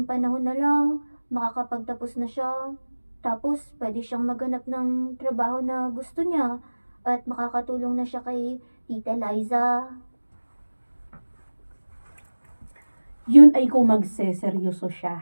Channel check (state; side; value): inverted; both; correlation -1.00